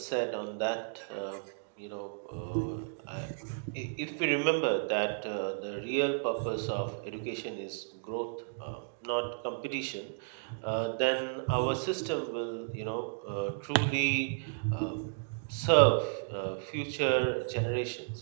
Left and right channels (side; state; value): left; silent; digital silence